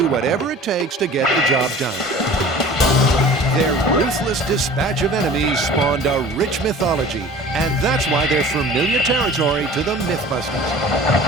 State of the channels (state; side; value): normal; both; correlation 0.43